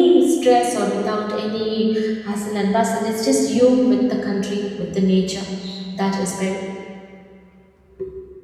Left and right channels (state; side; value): identical; both; correlation 1.00